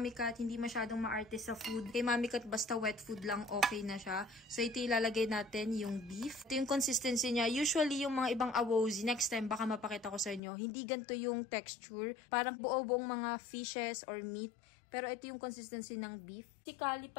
Cat, hindi masyadong maarte sa food. Kay Mami Cat, basta wet food lang, okay na siya. So, ito ilalagay natin yung beef. Ito yung consistency niya. Usually, yung mga ibang awozi, next time, baka mapakita ko sa inyo, hindi ganito yung texture. Parang buo-buong mga fishes or meat. Pero ito yung consistency ng beef. Si Kali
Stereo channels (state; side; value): drops out; right; at 10.4 s